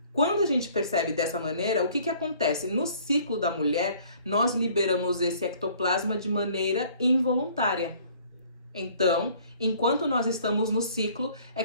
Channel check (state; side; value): inverted; both; correlation -0.56